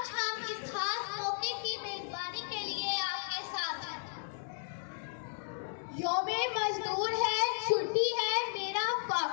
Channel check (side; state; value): right; silent; digital silence